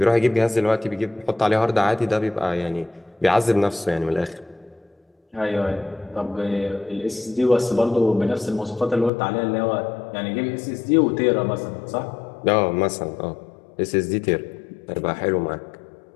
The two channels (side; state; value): right; drops out; at 9.1 s